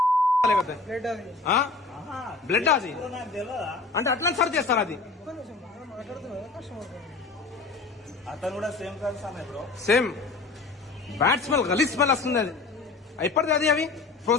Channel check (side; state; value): right; quieter; 4.0 dB